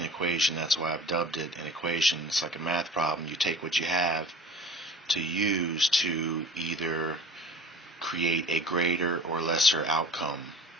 equation. That's why I've dubbed it an equation. It's like a math problem. You take what you have to use to either create a greater or lesser outcome.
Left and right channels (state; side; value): normal; both; correlation 0.42